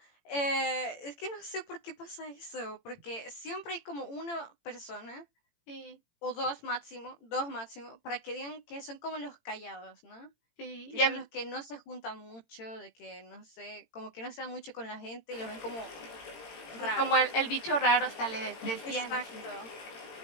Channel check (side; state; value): right; late; 18 ms